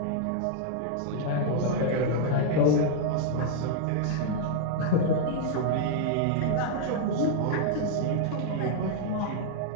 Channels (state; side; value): different; both; correlation 0.00